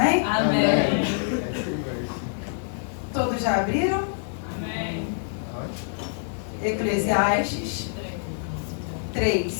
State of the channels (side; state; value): right; silent; digital silence